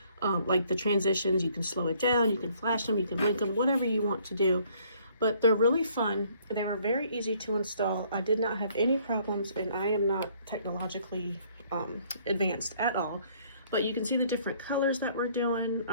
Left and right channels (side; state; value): both; inverted; correlation -0.63